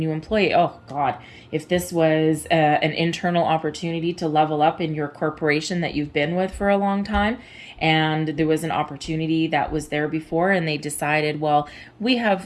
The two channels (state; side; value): identical; both; correlation 1.00